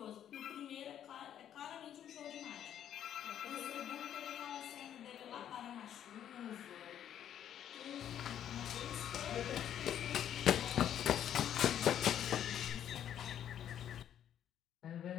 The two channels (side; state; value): right; quieter; 10.1 dB